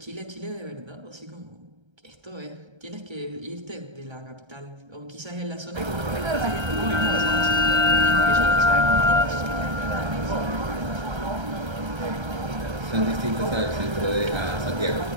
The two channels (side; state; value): left; late; 1.3 ms